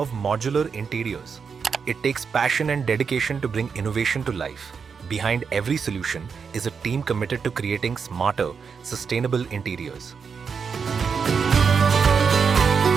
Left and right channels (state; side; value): quieter; left; 6.0 dB